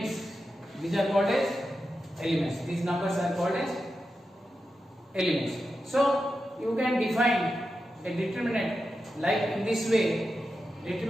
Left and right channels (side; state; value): both; normal; correlation 0.90